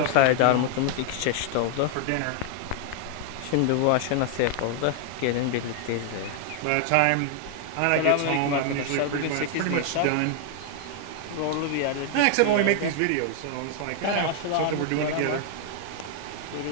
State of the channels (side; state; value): both; different; correlation 0.00